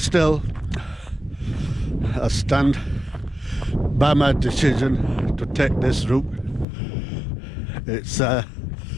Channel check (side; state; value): right; drops out; at 6.7 s